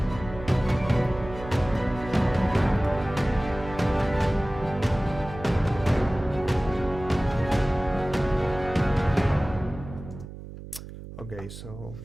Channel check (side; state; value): right; noise; hum, 13 dB below the sound